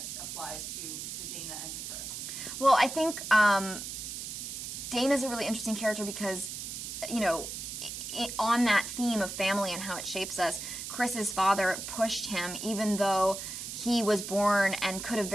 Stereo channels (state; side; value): noise; right; hiss, 7 dB below the sound